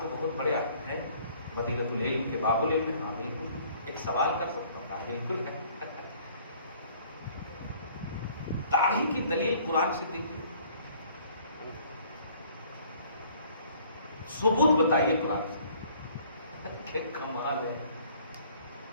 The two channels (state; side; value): inverted; both; correlation -0.57